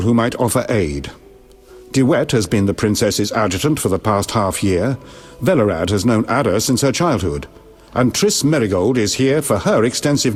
who might offer aid. Duet has been the princess's adjutant for the past half-year. Velerad has known Ada since her childhood. And Triss Merigold is here for her extensive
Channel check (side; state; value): both; identical; correlation 1.00